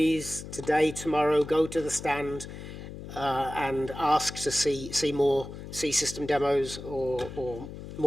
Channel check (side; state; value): left; noise; hum, 11 dB below the sound